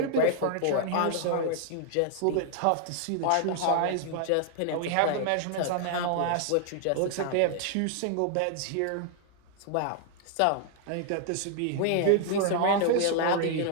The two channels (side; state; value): both; different; correlation 0.00